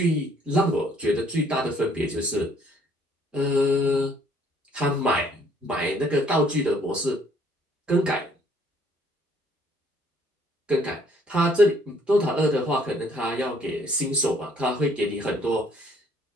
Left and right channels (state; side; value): normal; both; correlation 0.63